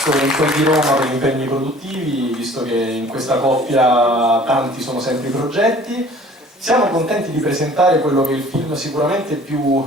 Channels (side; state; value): both; normal; correlation 0.50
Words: in quel di Roma per gli impegni produttivi, visto che in questa coppia tanti sono sempre i progetti. Siamo contenti di presentare quello che è il film sicuramente